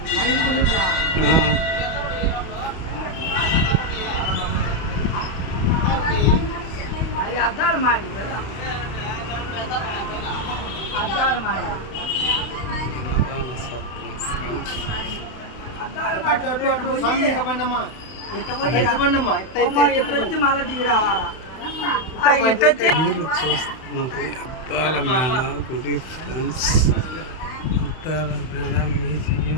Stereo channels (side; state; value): right; late; 31 ms